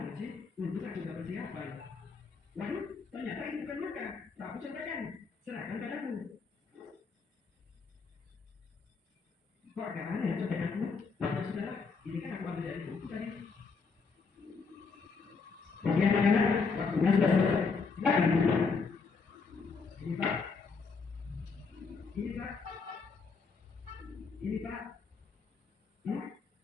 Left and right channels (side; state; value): right; quieter; 4.8 dB